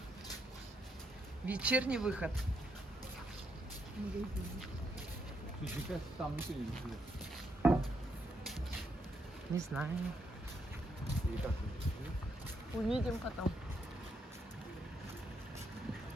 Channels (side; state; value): both; normal; correlation 0.78